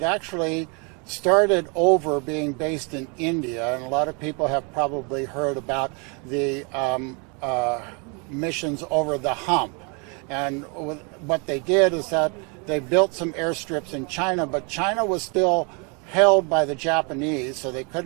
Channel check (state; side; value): quieter; left; 34.1 dB